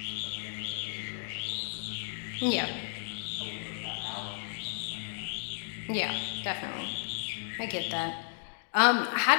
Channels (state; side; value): silent; right; digital silence